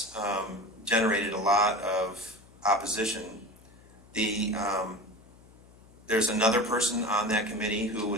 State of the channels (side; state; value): left; noise; hum, 25 dB below the sound